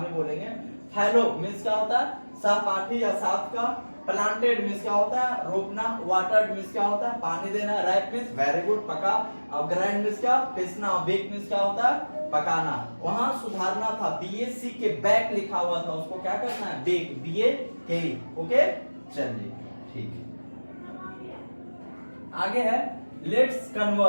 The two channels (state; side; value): inverted; both; correlation -1.00